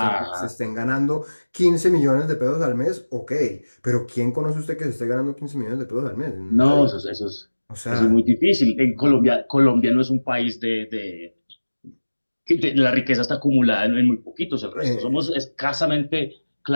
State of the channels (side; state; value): both; inverted; correlation -1.00